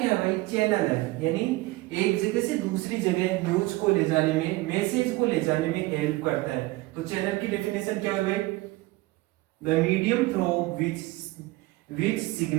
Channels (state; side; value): quieter; left; 20.4 dB